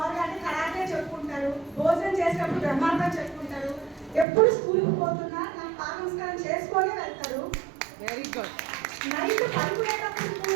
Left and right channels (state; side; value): drops out; left; at 4.2 s